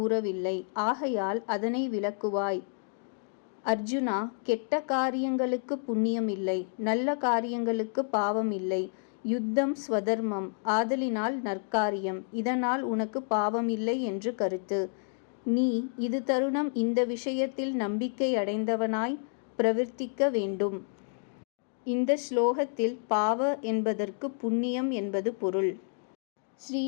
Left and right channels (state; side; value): silent; right; digital silence